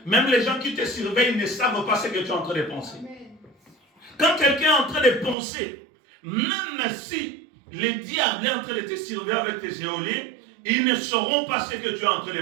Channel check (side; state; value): left; drops out; at 5.4 s